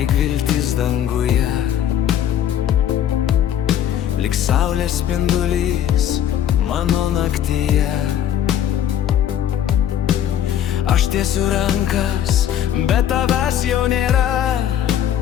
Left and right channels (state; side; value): quieter; right; 10.4 dB